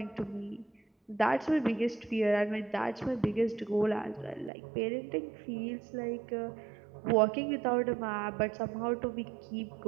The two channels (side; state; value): left; drops out; at 4.5 s